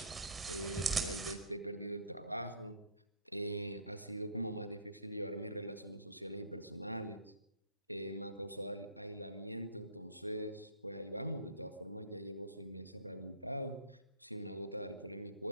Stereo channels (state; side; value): inverted; both; correlation -0.39